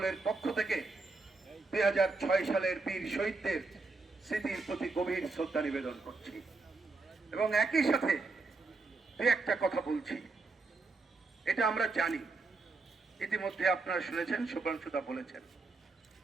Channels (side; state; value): left; quieter; 3.8 dB